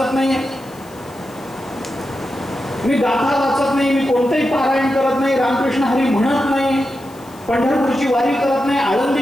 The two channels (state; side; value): noise; left; hiss, 25 dB below the sound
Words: नाही, मी गाथा वाचत नाही, मी कोणतेही पारायण करत नाही, रामकृष्ण हरी म्हणत नाही, पंढरपूरची वारी करत नाही,